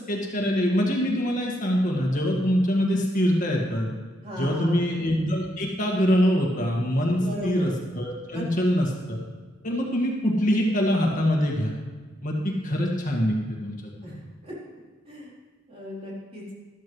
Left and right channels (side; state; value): both; normal; correlation 0.79